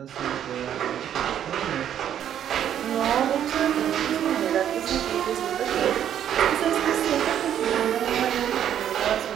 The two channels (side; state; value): left; quieter; 10.0 dB